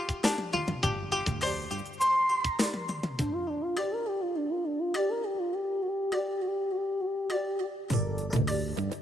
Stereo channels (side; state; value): both; normal; correlation 0.81